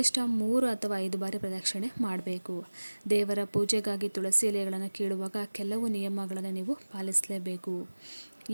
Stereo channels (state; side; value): inverted; both; correlation -1.00